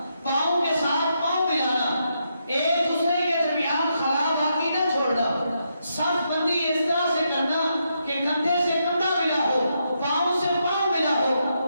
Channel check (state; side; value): inverted; both; correlation -0.81